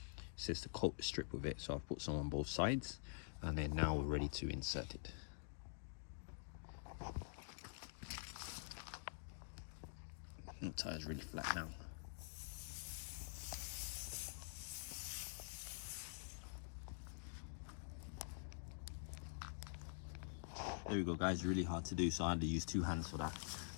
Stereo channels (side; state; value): right; silent; digital silence